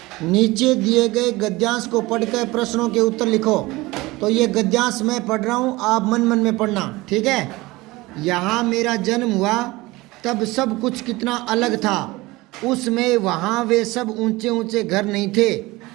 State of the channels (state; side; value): quieter; left; 20.8 dB